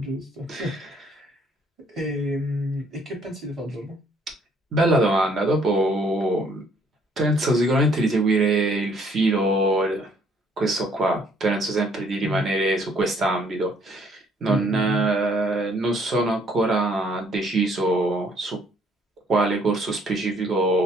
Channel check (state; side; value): normal; both; correlation 0.64